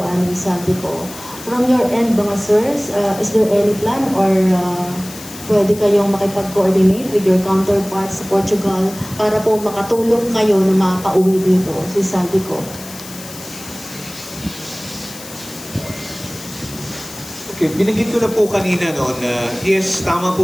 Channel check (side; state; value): left; noise; hiss, 15 dB below the sound